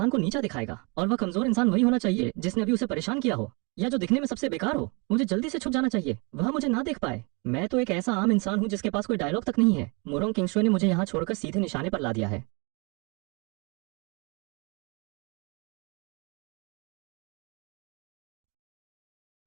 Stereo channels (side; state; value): left; quieter; 30.9 dB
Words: को नीचा दिखाएगा। और वह कमजोर इंसान वही होना चाहिए जिसने अभी उसे परेशान किया हो, या जो दिखने में सबसे बेकार हो। मुझे जल्दी से छुप जाना चाहिए, वह मुझे ना देख पाए। मैं तो एक ऐसा आम इंसान हूँ जिसके पास कोई डायलॉग तक नहीं है। मुरोंग किंगशुए ने मुझे यहाँ छोड़कर सीधे निशाने पर ला दिया है।